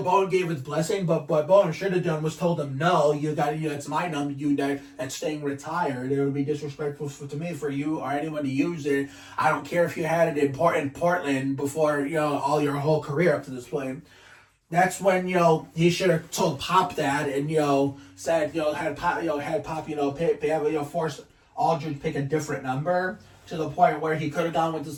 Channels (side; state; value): both; identical; correlation 1.00